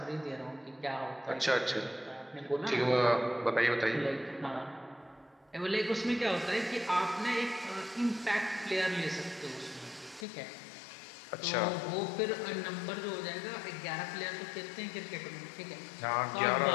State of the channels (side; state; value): right; drops out; at 10.2 s